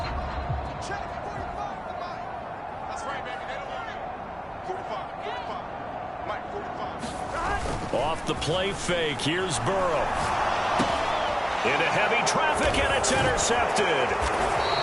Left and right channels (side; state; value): both; identical; correlation 1.00